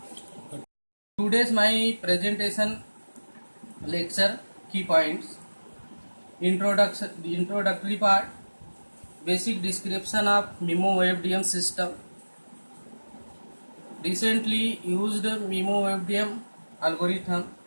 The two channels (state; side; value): inverted; both; correlation -1.00